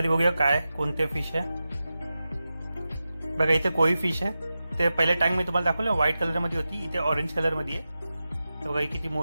बघूया काय कोणते फिश आहे. बघा इथे कोई फिश आहे. ते पहिल्या टँक मध्ये तुम्हाला दाखवलं व्हाईट कलर मध्ये होती, इथे ऑरेंज कलर मध्ये आहे. बघा ही किती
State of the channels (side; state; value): both; inverted; correlation -0.93